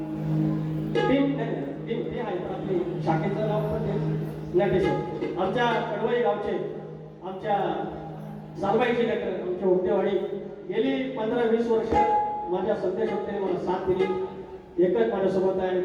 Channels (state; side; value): identical; both; correlation 1.00